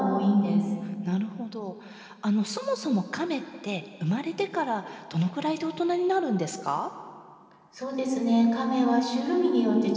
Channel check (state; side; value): identical; both; correlation 1.00